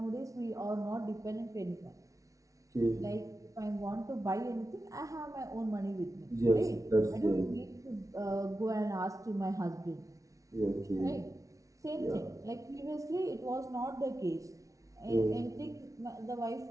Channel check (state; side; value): late; left; 0.16 ms